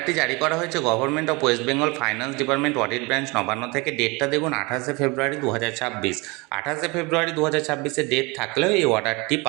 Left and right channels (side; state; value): left; quieter; 26.3 dB